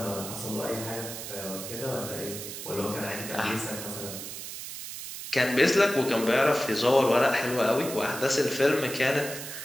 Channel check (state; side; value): noise; right; hiss, 9 dB below the sound